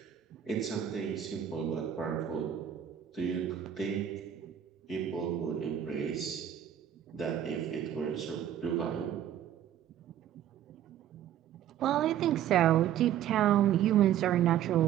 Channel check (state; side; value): quieter; left; 10.5 dB